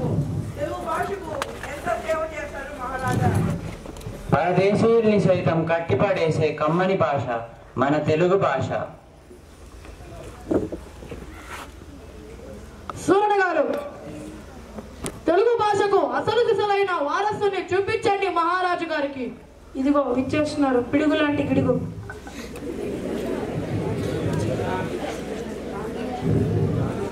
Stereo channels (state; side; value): identical; both; correlation 1.00